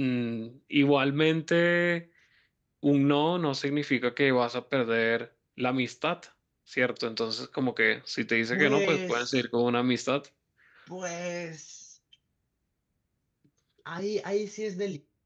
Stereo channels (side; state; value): both; identical; correlation 1.00